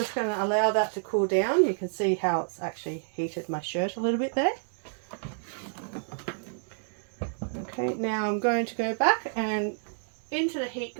going to allow that to cool down. You can see how it's actually heated my shirt a little bit there. Okay, now I'm going to go back and into the heat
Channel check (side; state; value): left; silent; digital silence